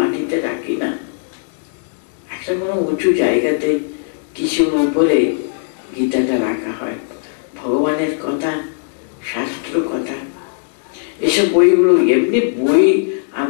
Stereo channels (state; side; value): silent; right; digital silence